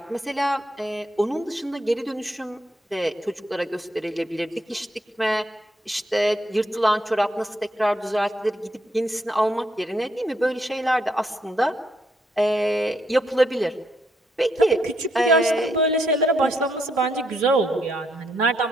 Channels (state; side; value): normal; both; correlation 0.75